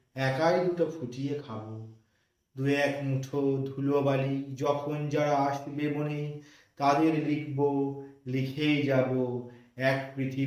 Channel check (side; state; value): both; identical; correlation 1.00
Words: একাই দুটো ফুটিয়ে খাবো। 2-1 মুঠো ধুলোবালি যখন যারা আসবে মনে, তাদের লিখবো, লিখেই যাব। এক